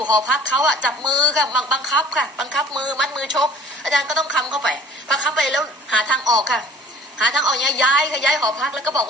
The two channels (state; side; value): normal; both; correlation 0.48